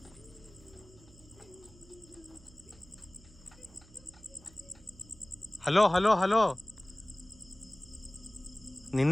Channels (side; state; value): right; noise; hum, 24 dB below the sound